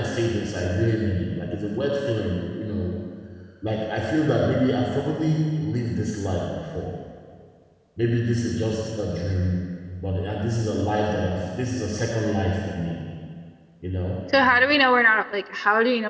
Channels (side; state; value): both; identical; correlation 1.00